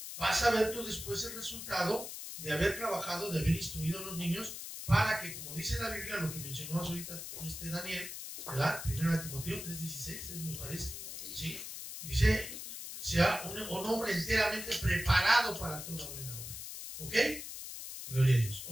Vas a ver tú después el resultado de haber trabajado, de haber instruido a los niños, para que, como dice la Biblia, lo que mencionó ahorita Daniel, ¿verdad? 1 Timoteo 3:16, me parece, ¿sí? Dice, sea un hombre enteramente preparado para toda buena obra. ¿Ok? Gloria a Dios.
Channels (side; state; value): left; noise; hiss, 8 dB below the sound